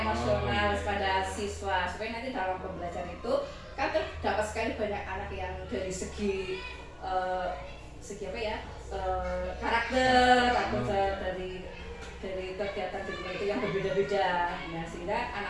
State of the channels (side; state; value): both; identical; correlation 1.00